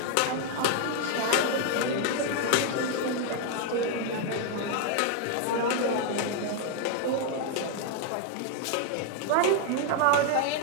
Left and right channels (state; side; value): different; both; correlation 0.00